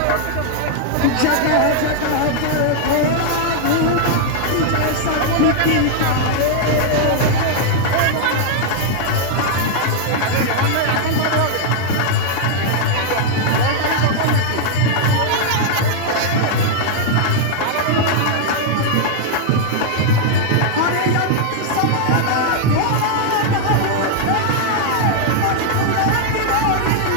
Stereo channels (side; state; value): both; different; correlation 0.00